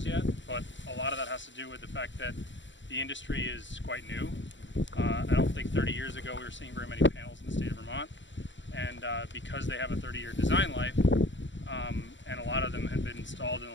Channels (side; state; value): right; late; 0.54 ms